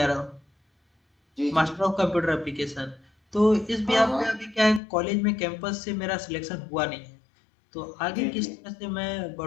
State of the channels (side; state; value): right; drops out; at 4.8 s